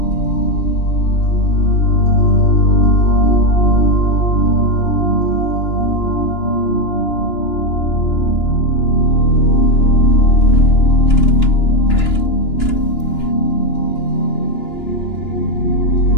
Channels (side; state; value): right; late; 2.9 ms